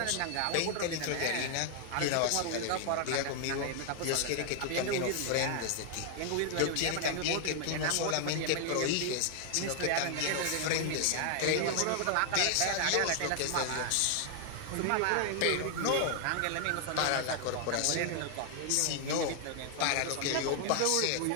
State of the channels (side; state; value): both; different; correlation 0.00